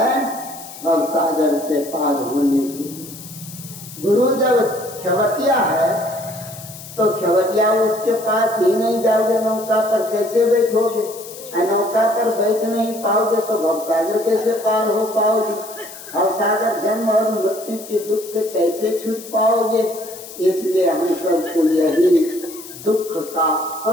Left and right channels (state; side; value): noise; left; hiss, 15 dB below the sound